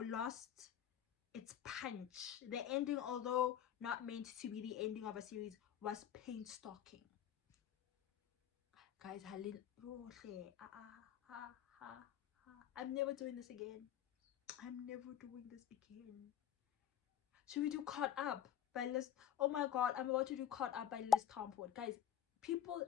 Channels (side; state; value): right; quieter; 10.0 dB